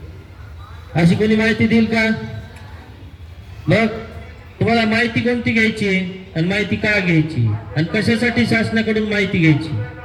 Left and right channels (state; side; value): identical; both; correlation 1.00